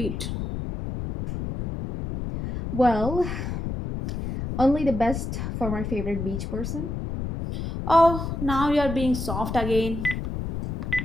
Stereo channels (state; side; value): noise; left; rumble, 5 dB below the sound